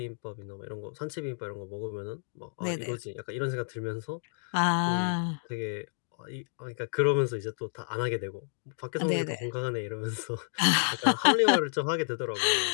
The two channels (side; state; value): right; silent; digital silence